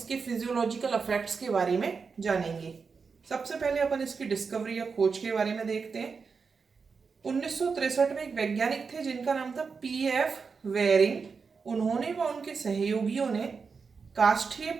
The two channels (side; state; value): left; quieter; 5.2 dB